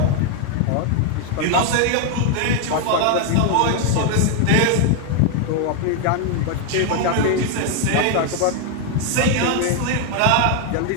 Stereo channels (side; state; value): both; different; correlation 0.00